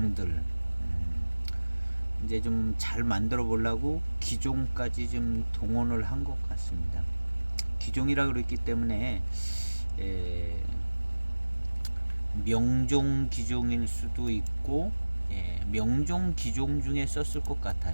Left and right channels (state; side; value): inverted; both; correlation -1.00